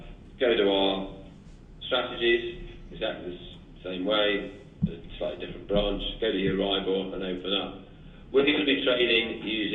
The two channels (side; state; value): both; identical; correlation 1.00